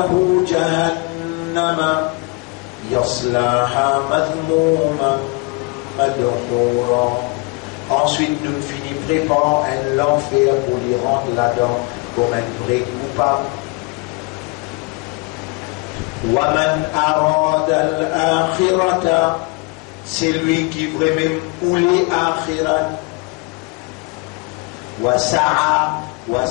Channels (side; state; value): right; quieter; 28.5 dB